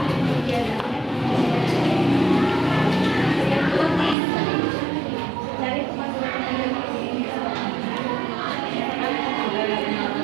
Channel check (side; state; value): left; drops out; at 4.2 s